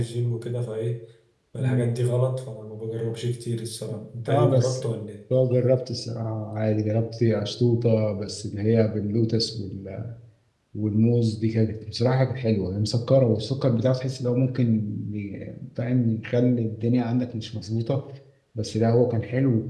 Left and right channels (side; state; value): both; identical; correlation 1.00